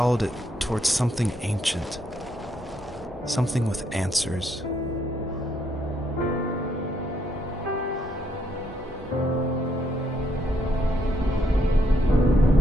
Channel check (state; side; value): normal; both; correlation 0.74